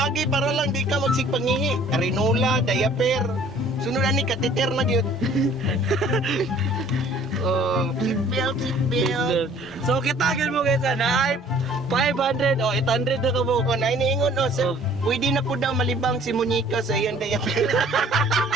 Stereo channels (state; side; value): normal; both; correlation 0.54